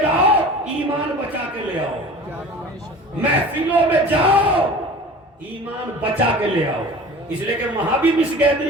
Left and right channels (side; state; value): both; normal; correlation 0.40